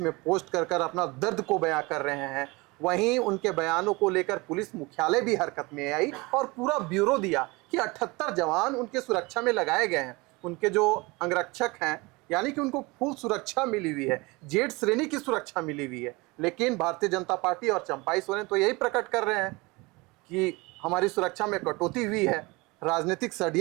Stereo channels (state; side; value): quieter; left; 24.6 dB